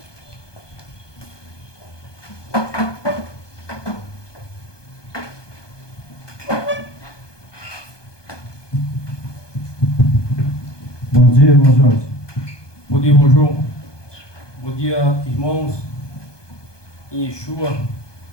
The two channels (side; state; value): right; late; 1.2 ms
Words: Bom dia, irmão Jorge. Bom dia, irmão João. Bom dia, irmãos. Em Yeshua,